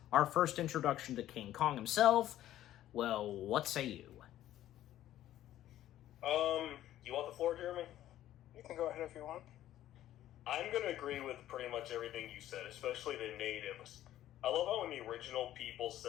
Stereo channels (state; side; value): quieter; right; 13.0 dB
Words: our first introduction to King Kong himself. Well, what say you? You want the floor, Jeremy? You can go ahead if you want. I'm going to agree with pretty much everything you said, especially the natives. I love how in the original people